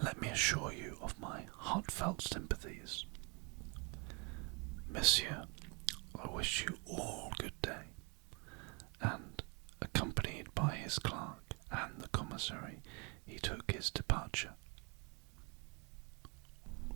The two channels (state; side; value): quieter; left; 32.9 dB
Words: let me assure you of my heartfelt sympathies. Monsieur, I wish you all good day." And, accompanied by his clerk and the commissary, he took his departure.